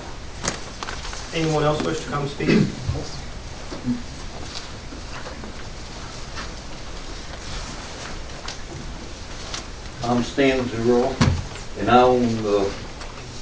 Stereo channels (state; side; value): identical; both; correlation 1.00